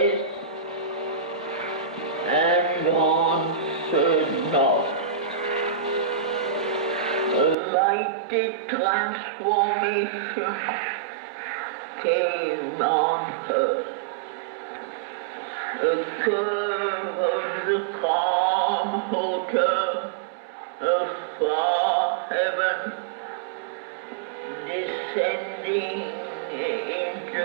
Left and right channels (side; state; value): left; drops out; at 7.6 s